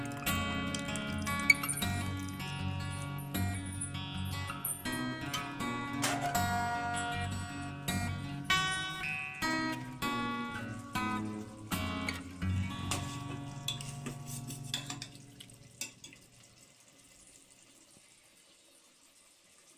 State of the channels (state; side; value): identical; both; correlation 1.00